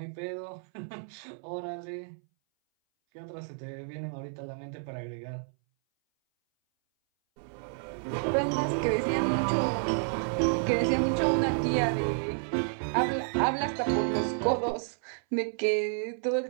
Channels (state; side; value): silent; left; 58 dB below the other